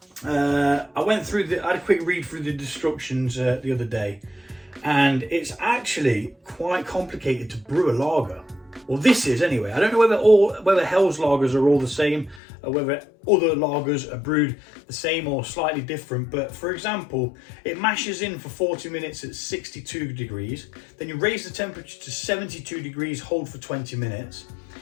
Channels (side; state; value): right; drops out; at 12.4 s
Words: I had a quick read through the instructions the other day, and it's actually quite complicated to brew a lager. Well, this is anyway. I don't know whether Helles lagers are all the same, or whether other lagers are brewed the same or slightly different. But for example, it mashes in for 40 minutes at 62 degrees. Then you raise the temperature to 72 degrees, hold for 20 minutes.